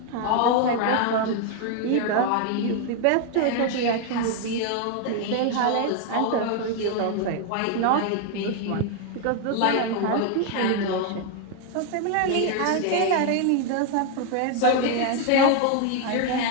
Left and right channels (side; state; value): both; different; correlation 0.01